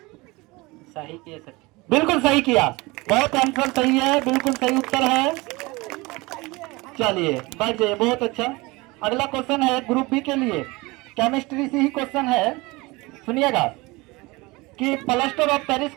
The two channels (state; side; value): quieter; left; 23.4 dB